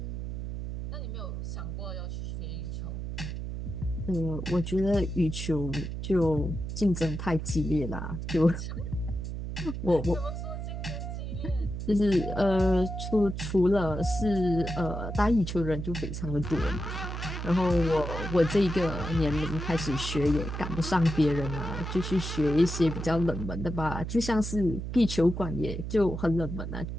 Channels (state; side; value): noise; right; hum, 5 dB below the sound